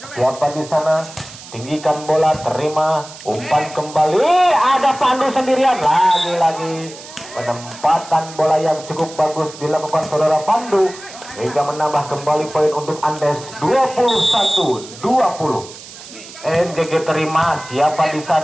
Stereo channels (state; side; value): noise; right; hiss, 16 dB below the sound